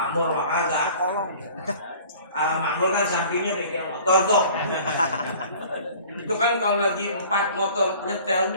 kagak. Al-Makmur kan sampingnya bengkel motor tuh. Itu kan kalau lagi 4 motor nyetel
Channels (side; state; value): both; inverted; correlation -0.47